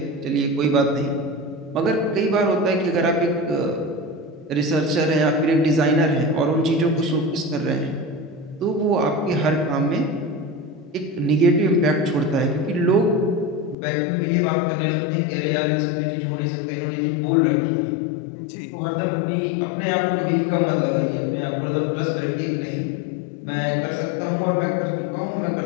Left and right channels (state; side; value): drops out; right; at 13.8 s